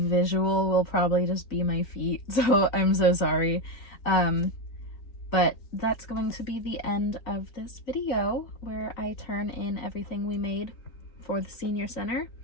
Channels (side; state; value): right; late; 4.0 ms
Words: will probably just be my feet. So I'm so sorry. But that's going to be the end of this video where I turn in everything we made for the senior center.